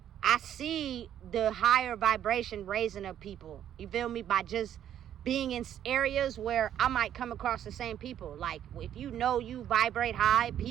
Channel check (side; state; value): left; quieter; 10.5 dB